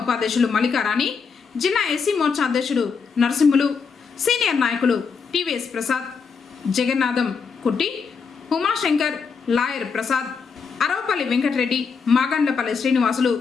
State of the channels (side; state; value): right; quieter; 5.6 dB